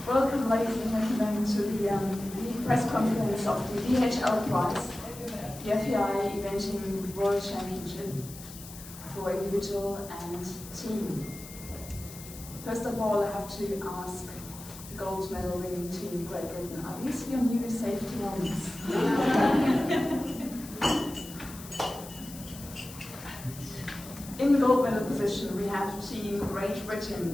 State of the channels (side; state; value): left; noise; hiss, 15 dB below the sound